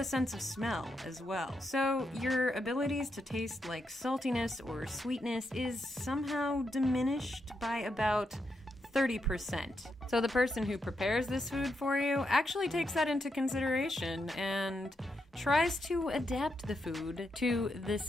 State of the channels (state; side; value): normal; both; correlation 0.83